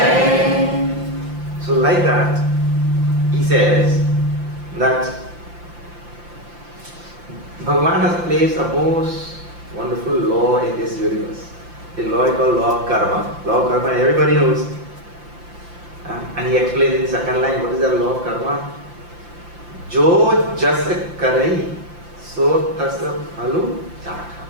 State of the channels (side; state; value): left; late; 5.8 ms